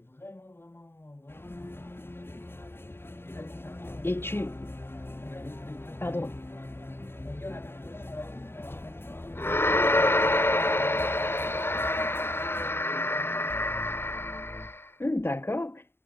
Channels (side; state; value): right; late; 0.11 ms